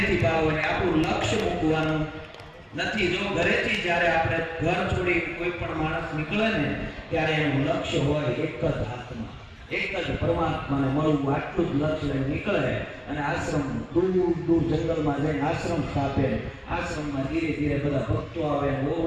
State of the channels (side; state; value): both; identical; correlation 1.00